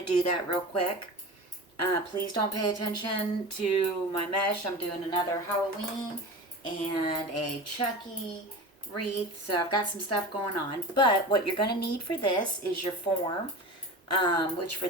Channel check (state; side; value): normal; both; correlation 0.32